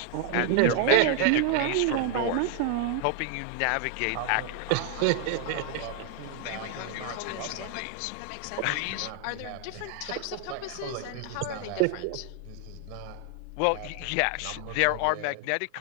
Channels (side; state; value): both; different; correlation 0.00